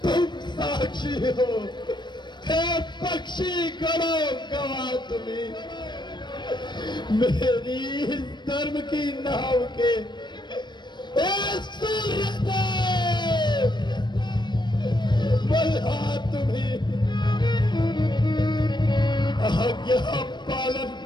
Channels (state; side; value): late; right; 0.22 ms